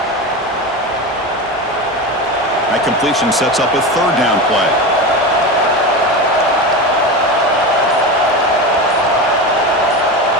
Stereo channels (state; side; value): normal; both; correlation 0.23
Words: That completion sets up a third down play.